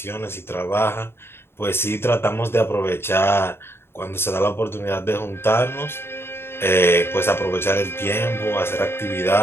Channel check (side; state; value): right; late; 0.11 ms